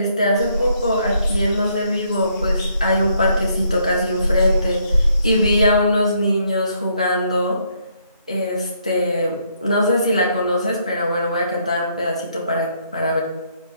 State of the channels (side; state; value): both; inverted; correlation -0.71